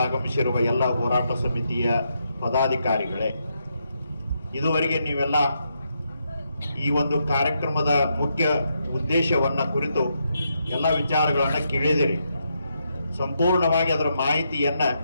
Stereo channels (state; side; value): inverted; both; correlation -0.80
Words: ಆಗಮಿಸಿರುವ ಎಲ್ಲ ಹೋರಾಟ ಸಮಿತಿಯ ಪದಾಧಿಕಾರಿಗಳೇ, ಇದುವರೆಗೆ ನೀವೆಲ್ಲ ಈ ಒಂದು ಕಾರ್ಯಕ್ರಮದ ಮುಖ್ಯ ಉದ್ದೇಶವನ್ನ ಕುರಿತು ಎಲ್ಲ ವಿಚಾರಗಳನ್ನು ಕೇಳಿದಿರಿ. ಸಂಪೂರ್ಣವಾಗಿ ಅದರ ಮಾಹಿತಿಯನ್ನ